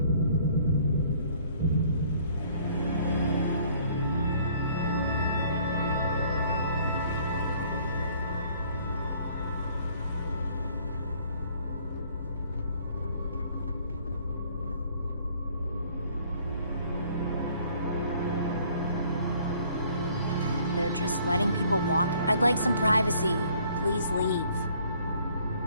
They're just letting people walk. I'd like some privacy. Please leave.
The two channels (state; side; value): inverted; both; correlation -0.59